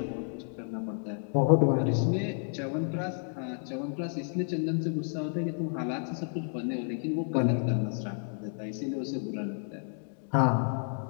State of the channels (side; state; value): right; silent; 57 dB below the other